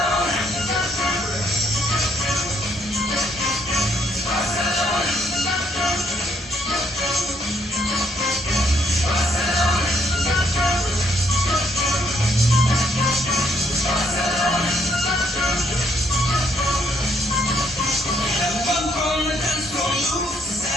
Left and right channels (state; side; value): normal; both; correlation 0.70